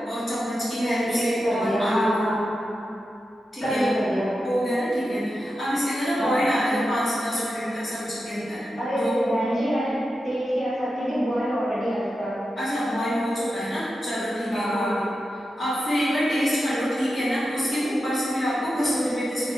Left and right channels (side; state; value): both; normal; correlation 0.90